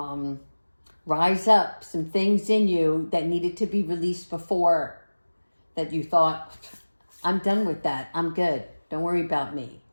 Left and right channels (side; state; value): both; inverted; correlation -1.00